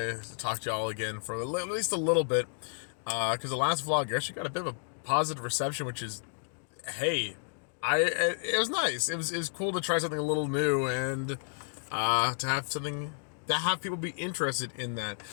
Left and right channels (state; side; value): silent; right; digital silence